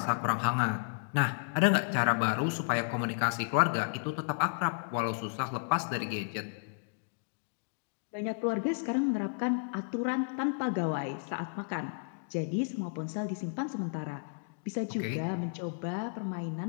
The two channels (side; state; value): right; silent; digital silence